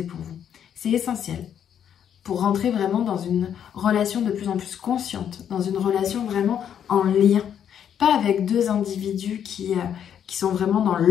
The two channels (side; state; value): right; quieter; 9.0 dB